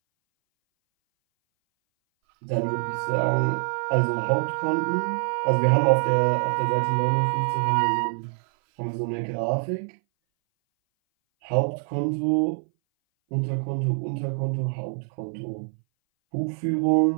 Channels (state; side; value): silent; left; 59 dB below the other